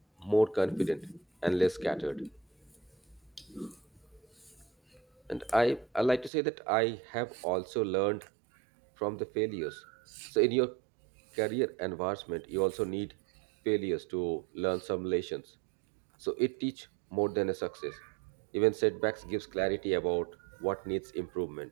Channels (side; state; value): left; drops out; at 6.3 s